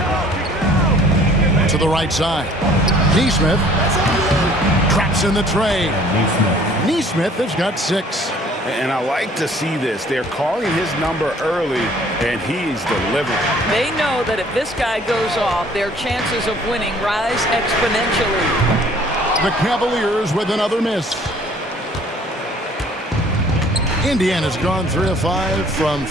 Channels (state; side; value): normal; both; correlation 0.55